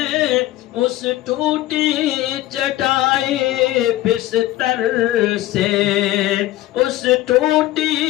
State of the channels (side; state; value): right; quieter; 15.6 dB